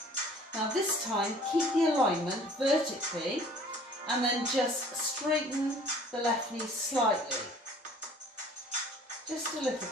Now this time, keep the alignment vertically and then just straighten the left knee slightly. Just a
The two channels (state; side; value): normal; both; correlation 0.52